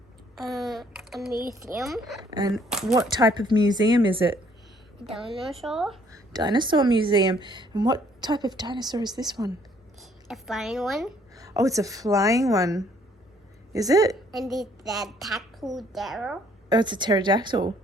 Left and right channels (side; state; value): both; normal; correlation 0.63